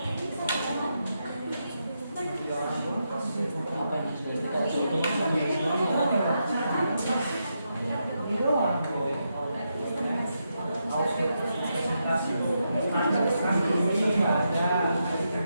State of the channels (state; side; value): inverted; both; correlation -0.84